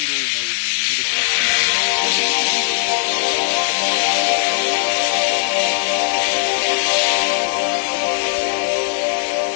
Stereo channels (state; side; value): silent; right; digital silence